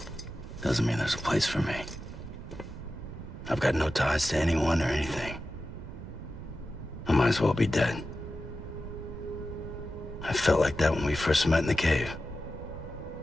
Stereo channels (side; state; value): right; noise; rumble, 11 dB below the sound